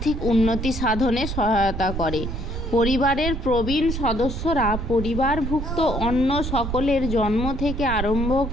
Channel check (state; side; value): noise; right; rumble, 5 dB below the sound